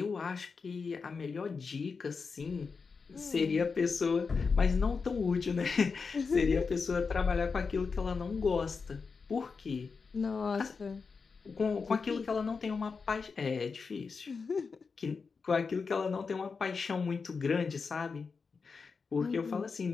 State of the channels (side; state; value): right; quieter; 5.0 dB